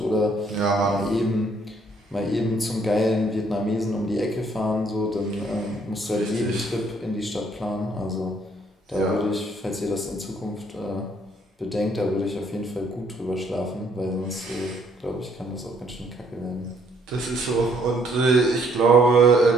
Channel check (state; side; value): normal; both; correlation 0.66